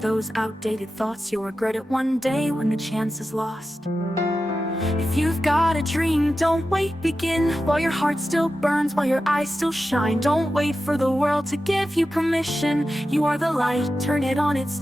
outdated thoughts, you'll regret it one day when the chance is lost. If you've got a dream, don't wait, begin while your heart still burns, while your eyes still shine. Don't wait for the world to give you permission. You are the light, turn it on, it's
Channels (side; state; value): both; normal; correlation 0.92